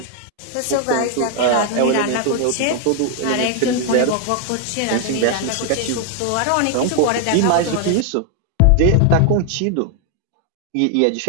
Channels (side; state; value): both; different; correlation 0.00